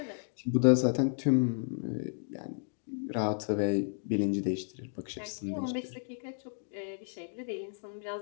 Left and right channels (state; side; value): silent; right; digital silence